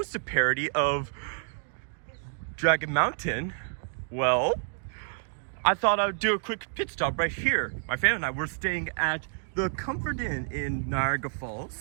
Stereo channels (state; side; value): silent; left; 57 dB below the other